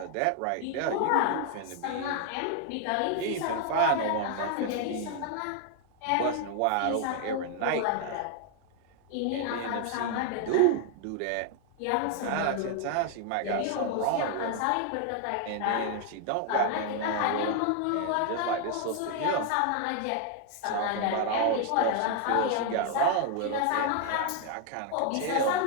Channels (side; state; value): both; different; correlation 0.00